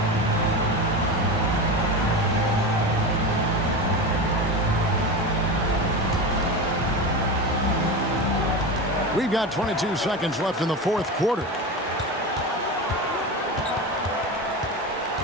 We've got 22 seconds left in the fourth quarter.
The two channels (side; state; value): both; normal; correlation 0.23